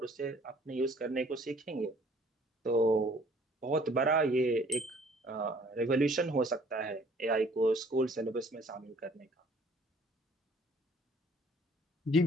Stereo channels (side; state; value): both; normal; correlation 0.57